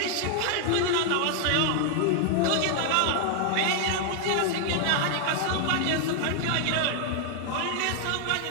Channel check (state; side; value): different; both; correlation 0.00